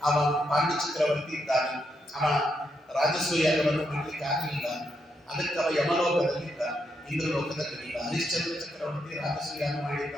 ಅವ ಪಾಂಡ್ಯ ಚಕ್ರವರ್ತಿ ಇದ್ದಾನೆ, ಅವ ರಾಜಸೂಯಾಗವನ್ನು ಮಾಡಲಿಕ್ಕೆ ಆಗಲಿಲ್ಲ. ಅದಕ್ಕೆ ಅವ ಯಮಲೋಕದಲ್ಲಿದ್ದ, ಇಂದ್ರಲೋಕದಲ್ಲಿಲ್ಲ. ಹರಿಶ್ಚಂದ್ರ ಚಕ್ರವರ್ತಿ ರಾಜಸೂಯಾಗ ಮಾಡಿದ್ದ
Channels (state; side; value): normal; both; correlation 0.80